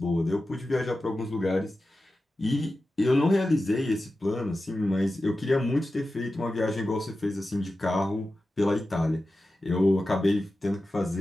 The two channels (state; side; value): normal; both; correlation 0.93